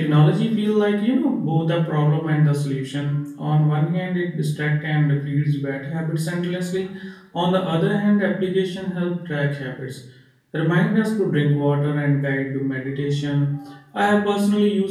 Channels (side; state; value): both; identical; correlation 1.00